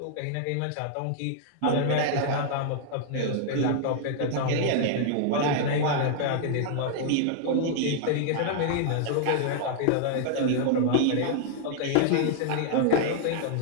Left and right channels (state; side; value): different; both; correlation -0.01